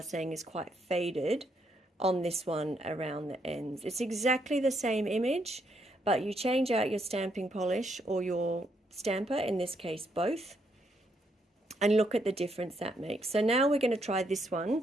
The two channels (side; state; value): both; normal; correlation 0.75